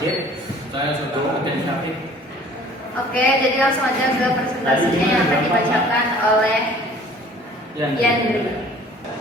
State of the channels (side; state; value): both; normal; correlation 0.51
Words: Saya Soto Ketin Syafik. Oke, jadi langsung aja ke presentasinya yang akan dibacakan oleh Yandri.